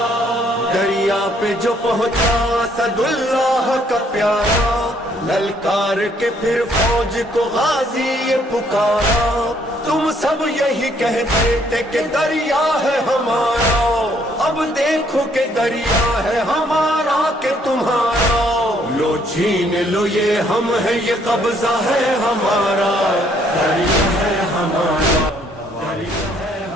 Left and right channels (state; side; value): normal; both; correlation 0.67